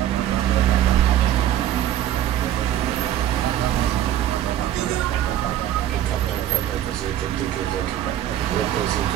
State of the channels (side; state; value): left; quieter; 11.7 dB